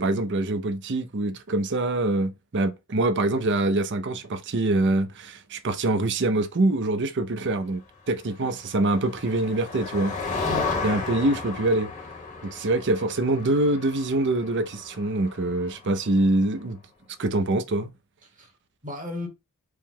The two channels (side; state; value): both; normal; correlation 0.35